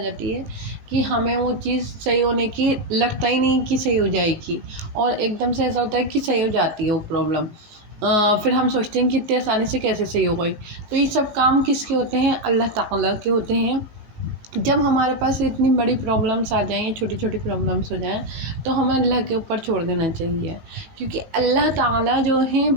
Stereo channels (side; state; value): left; late; 19 ms